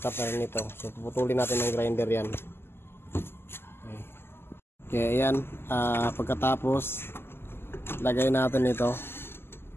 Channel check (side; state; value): right; late; 0.12 ms